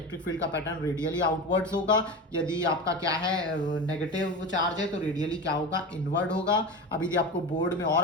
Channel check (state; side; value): normal; both; correlation 0.26